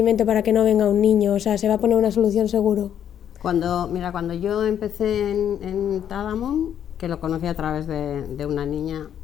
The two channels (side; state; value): right; quieter; 9.5 dB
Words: para que no venga un niño. O sea, se va a poner una solución seguro. Cuando yo empecé en Tadamun, que lo conocí a través de una niña